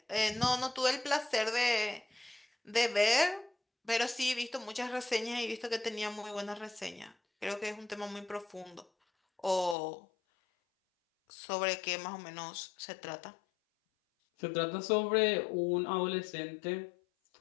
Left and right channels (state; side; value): drops out; right; at 9.8 s